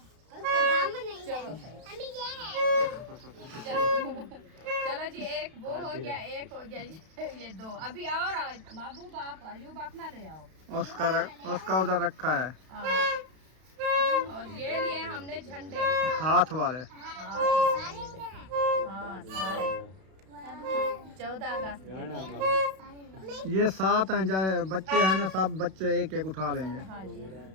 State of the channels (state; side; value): late; left; 32 ms